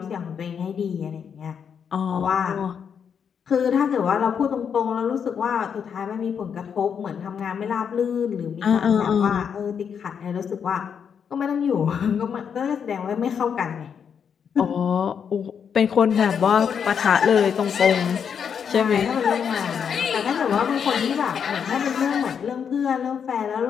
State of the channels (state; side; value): quieter; right; 7.3 dB